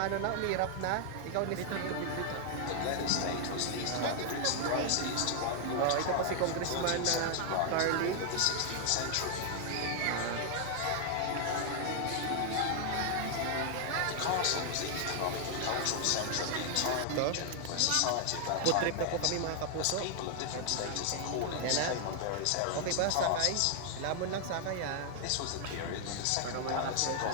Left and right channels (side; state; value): both; different; correlation 0.00